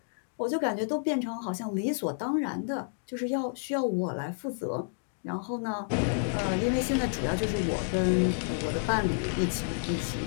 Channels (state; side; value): silent; right; digital silence